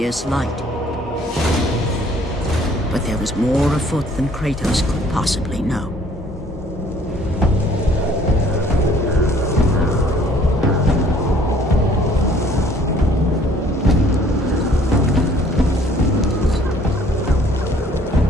light. But there was more afoot than Kratos could possibly know.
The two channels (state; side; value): normal; both; correlation 0.57